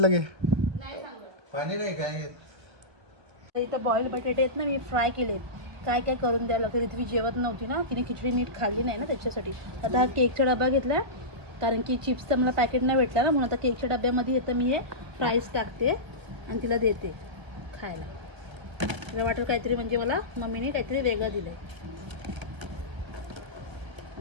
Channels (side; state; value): left; late; 1.5 ms